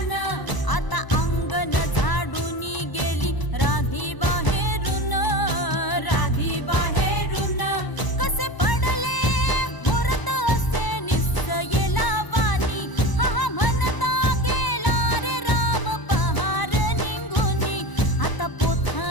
आता अंगण झाडून गेली राधी बाहेरून, राधी बाहेरून कसे पडले मुहूर्त असे निश्चयेला वाणी, हा हा म्हणता गेला रे राम पहार निघूनी, आता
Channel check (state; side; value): late; right; 1.0 ms